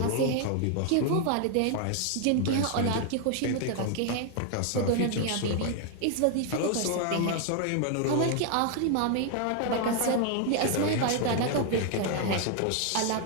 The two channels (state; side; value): different; both; correlation 0.00